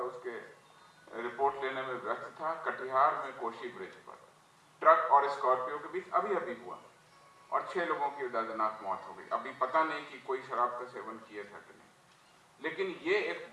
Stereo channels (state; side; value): identical; both; correlation 1.00